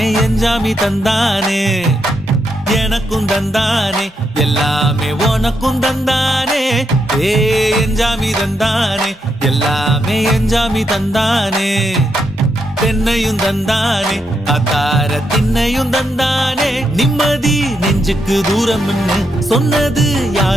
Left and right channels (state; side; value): normal; both; correlation 0.81